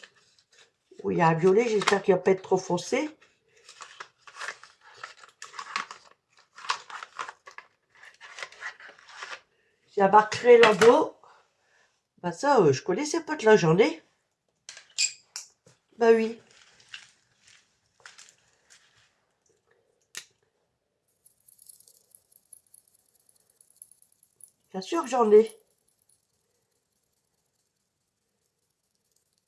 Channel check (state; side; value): identical; both; correlation 1.00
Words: Oui, il y a un violet, j'espère qu'il ne va pas être trop foncé. la marque Relando. Bah ça, je connaissais pas de la journée. Bah oui. Bien sûr que j'en ai.